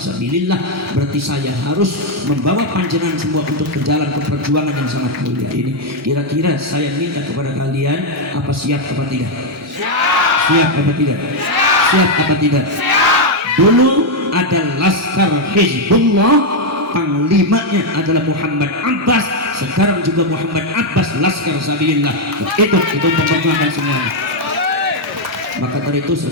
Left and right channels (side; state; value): both; normal; correlation 0.01